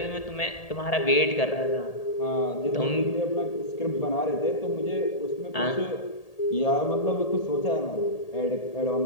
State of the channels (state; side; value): late; right; 1.8 ms